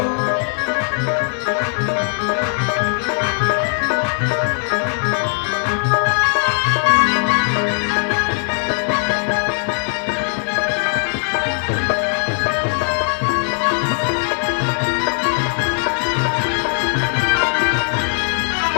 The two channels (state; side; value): silent; right; 66 dB below the other